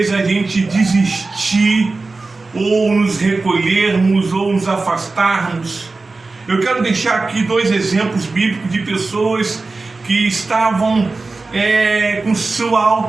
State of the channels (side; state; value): left; quieter; 3.7 dB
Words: a gente desistir, ou nos recolhermos, ou nos afastarmos? Eu quero deixar aqui 2 exemplos bíblicos de pessoas que estavam com sua